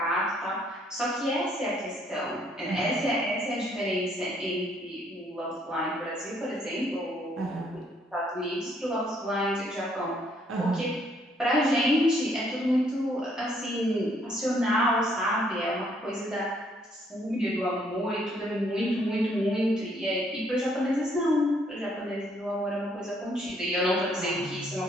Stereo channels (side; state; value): both; normal; correlation 0.68